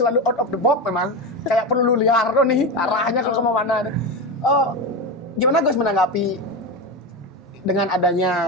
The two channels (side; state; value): both; normal; correlation 0.18